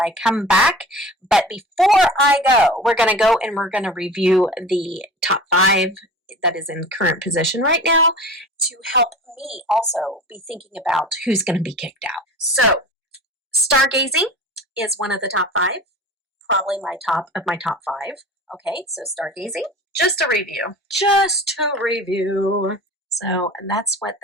come back. But before I go, we're going to go and we're going to review the top 5 that is in current position right now to help me also be thinking about who's going to be kicked out. So stargazing is one of the top 5. Probably my top of my top 5. Okay, so stargazing. Just a review. So, and that's what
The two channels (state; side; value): normal; both; correlation 0.37